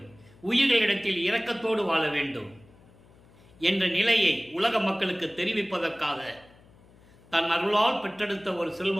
உயிர்களிடத்தில் இரக்கத்தோடு வாழ வேண்டும் என்ற நிலையை உலக மக்களுக்கு தெரிவிப்பதற்காக தன் அருளால் பெற்றெடுத்த ஒரு செல்வ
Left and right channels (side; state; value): left; noise; hum, 26 dB below the sound